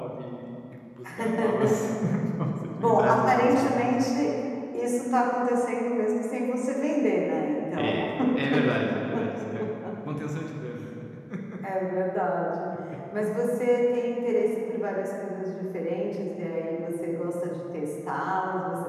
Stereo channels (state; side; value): identical; both; correlation 1.00